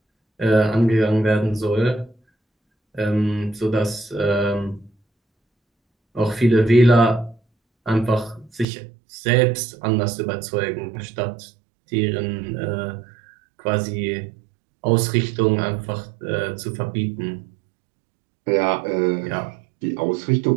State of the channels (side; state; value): left; drops out; at 8.7 s